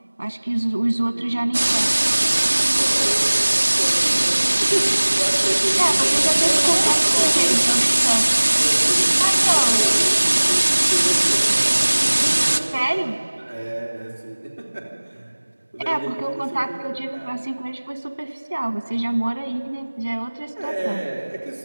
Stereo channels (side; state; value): both; inverted; correlation -1.00